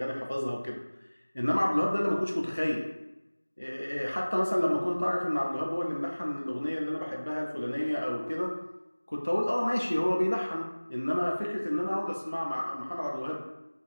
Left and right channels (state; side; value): inverted; both; correlation -1.00